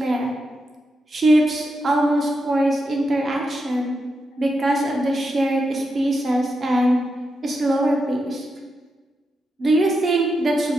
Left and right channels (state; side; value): normal; both; correlation 0.86